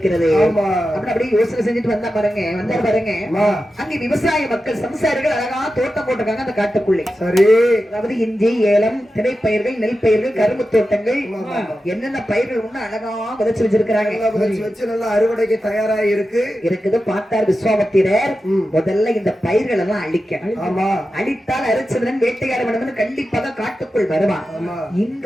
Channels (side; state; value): both; normal; correlation 0.92